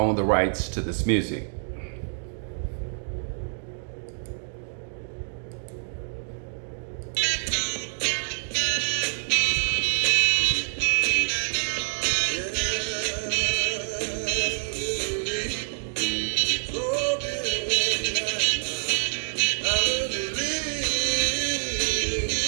the rights to this music.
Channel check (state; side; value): silent; left; digital silence